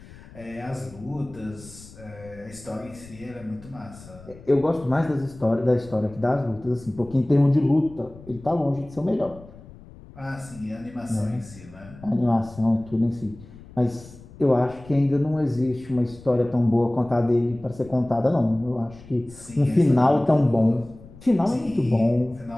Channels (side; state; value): left; noise; rumble, 20 dB below the sound